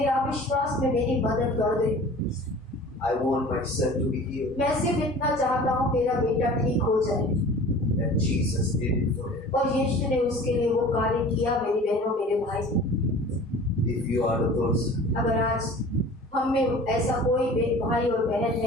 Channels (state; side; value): normal; both; correlation 0.43